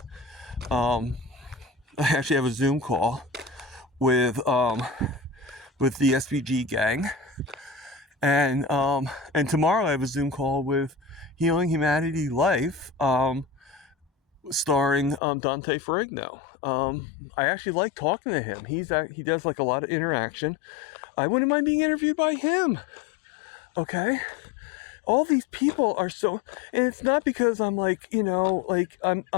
I actually have a Zoom call with the SBG gang, and tomorrow I have a Zoom call with Healing Humanity Life, starring Dante Ferrigno. I actually like talking to him. He does like a lot of interaction. I wouldn't mind being interviewed by him. Okay. All these people are so, and it's not because I'm like, I'm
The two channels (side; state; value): right; drops out; at 15.2 s